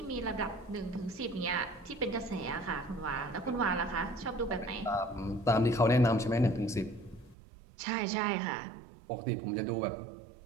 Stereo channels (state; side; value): drops out; left; at 7.4 s